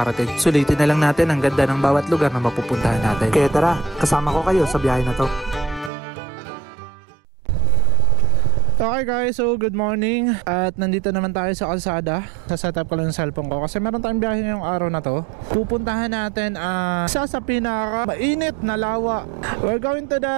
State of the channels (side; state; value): left; drops out; at 5.9 s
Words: Sulitin na lang natin ang ganda ng bawat lugar na mapupuntahan natin. Kaya tara, kasama ko kayo sa biyahe na to. Okay guys, so good morning. At nandito naman tayo sa kalsada. Sa-setup ko lang yung cellphone ko kasi meron tayong biyahe ngayong araw na to. Pupuntahan natin isa sa pinaka mainit na lawa. We're going to